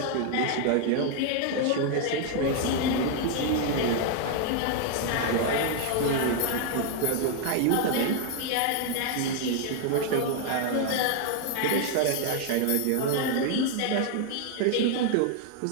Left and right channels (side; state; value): both; different; correlation 0.00